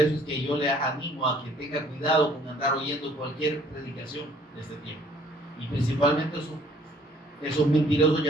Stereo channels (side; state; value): both; normal; correlation 0.59